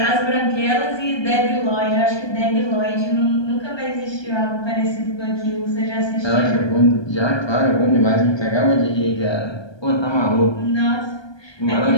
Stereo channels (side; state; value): right; late; 1.2 ms